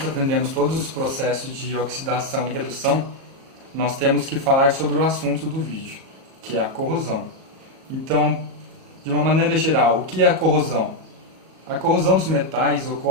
aprendemos todos os processos de oxidação e redução. Nós temos que falar sobre o assunto do vídeo, que é a corrosão. Então, de uma maneira geral, o que é a corrosão? A corrosão dos metais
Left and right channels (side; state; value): left; late; 37 ms